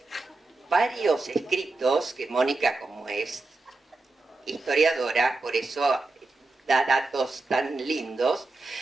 varios escritos, que Mónica, como es historiadora, por eso da datos tan lindos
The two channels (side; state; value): left; quieter; 3.3 dB